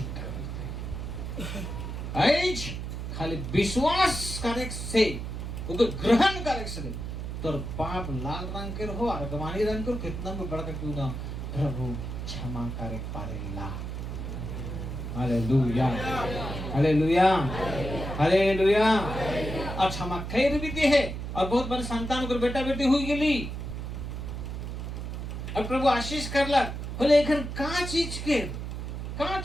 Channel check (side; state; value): right; noise; hum, 6 dB below the sound